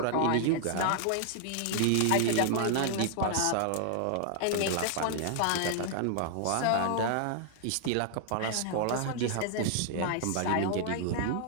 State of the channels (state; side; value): different; both; correlation -0.01